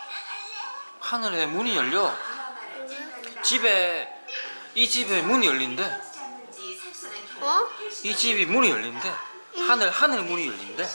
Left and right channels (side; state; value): both; inverted; correlation -1.00